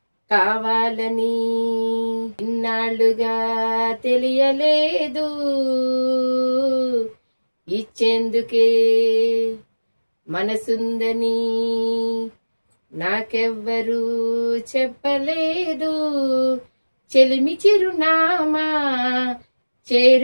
కావాలని ఇన్నాళ్ళుగా తెలియలేదు, ఇచ్చేందుకే మనసుందని నాకెవ్వరూ చెప్పలేదు. చెలిమి చిరునామా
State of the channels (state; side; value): inverted; both; correlation -1.00